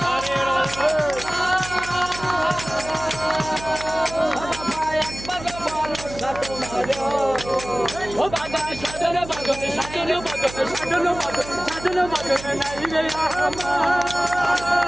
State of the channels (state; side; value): noise; right; hum, 13 dB below the sound